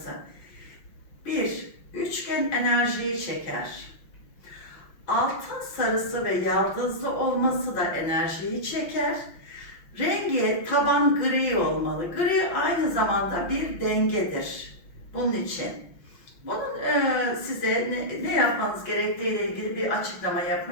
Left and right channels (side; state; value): right; late; 5.9 ms